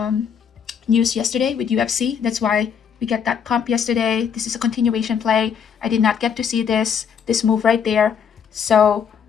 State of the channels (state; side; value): quieter; right; 7.3 dB